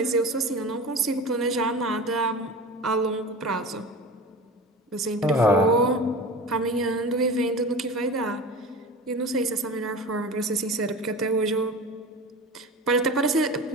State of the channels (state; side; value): normal; both; correlation 0.33